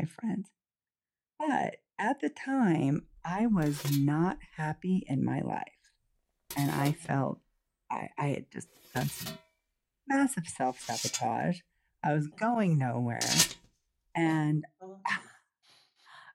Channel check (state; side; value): identical; both; correlation 1.00